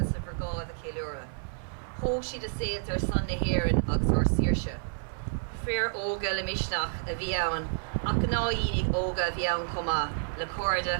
of Vergá the Kilura. Ho she the sales are Sunday here in Oxor Sirsha. Fair Olga Lemishnach, a Viaun, Akanaini Olga Viaun Coma, Lacorda,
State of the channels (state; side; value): silent; left; 56 dB below the other